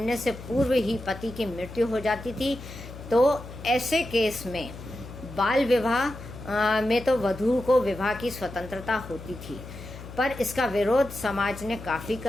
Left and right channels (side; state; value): left; noise; hum, 13 dB below the sound